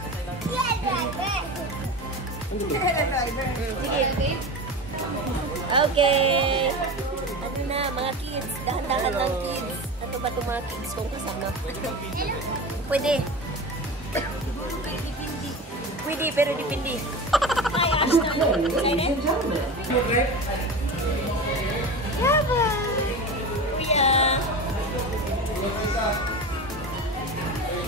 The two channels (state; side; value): normal; both; correlation 0.28